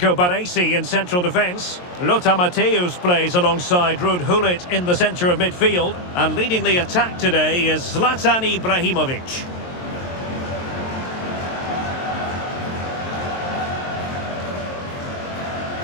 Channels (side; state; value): right; late; 23 ms